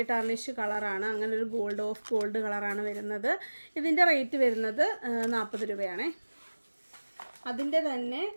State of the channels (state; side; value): inverted; both; correlation -1.00